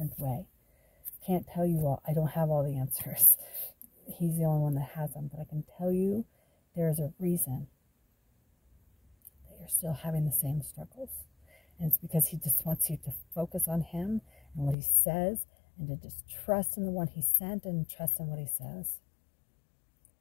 way. I can't tell you all. I don't have all the answers. He's the only one that has them, but I can tell you there's a reason that you're still having the same struggles. And it's because He just wants you to focus on Him and what He says, and to just trust in the one He sent and trust in what He says.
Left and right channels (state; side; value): drops out; right; at 14.8 s